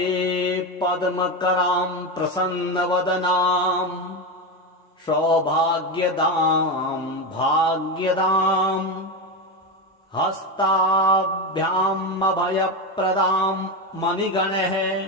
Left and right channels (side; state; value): both; normal; correlation 0.15